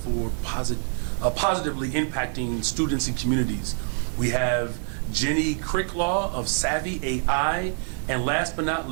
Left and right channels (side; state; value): left; silent; 61 dB below the other